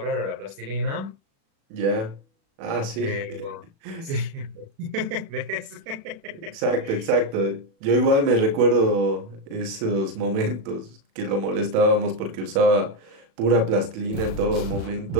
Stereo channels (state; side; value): late; left; 36 ms